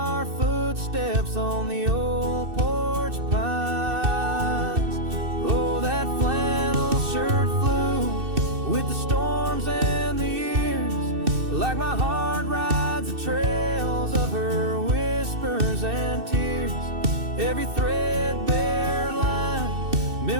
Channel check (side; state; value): left; late; 2.6 ms